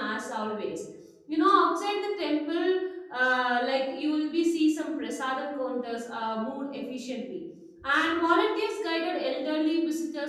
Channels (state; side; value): identical; both; correlation 1.00